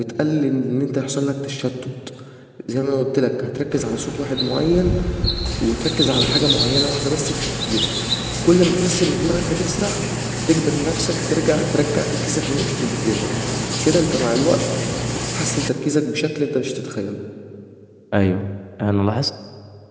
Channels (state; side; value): identical; both; correlation 1.00